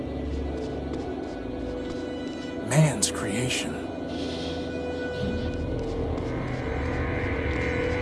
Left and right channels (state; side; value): identical; both; correlation 1.00